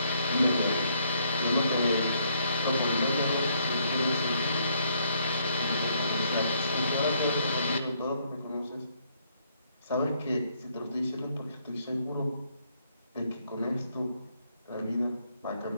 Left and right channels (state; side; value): inverted; both; correlation -0.70